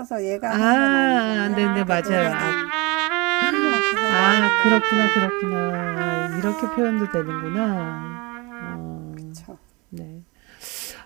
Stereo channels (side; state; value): left; quieter; 26.6 dB